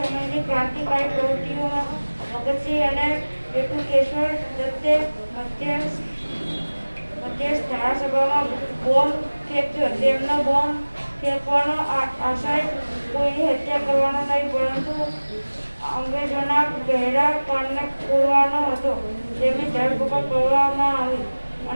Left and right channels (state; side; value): inverted; both; correlation -1.00